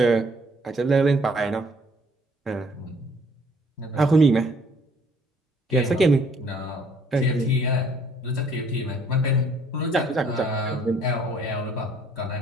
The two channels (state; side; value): normal; both; correlation 0.61